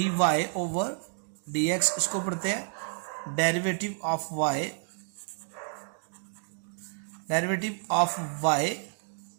y over d x, इसको पढ़ते हैं derivative of y, derivative of y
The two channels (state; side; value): silent; left; 56 dB below the other